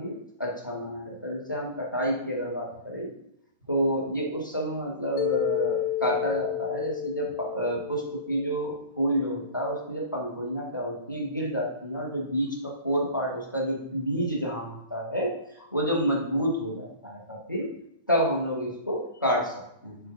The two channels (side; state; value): both; inverted; correlation -0.37